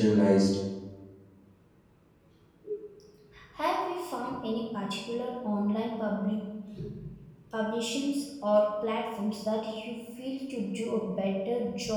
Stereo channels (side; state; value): both; identical; correlation 1.00